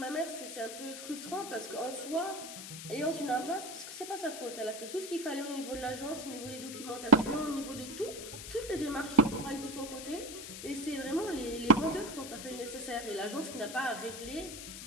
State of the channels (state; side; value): noise; left; hiss, 9 dB below the sound